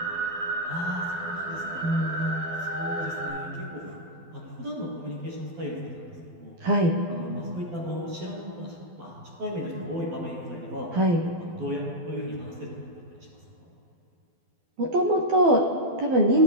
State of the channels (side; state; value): left; late; 12 ms